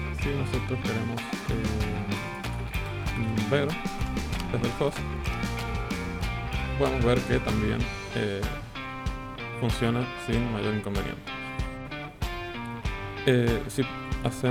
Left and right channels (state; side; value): identical; both; correlation 1.00